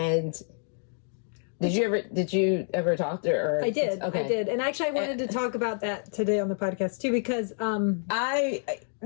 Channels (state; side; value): silent; right; 57 dB below the other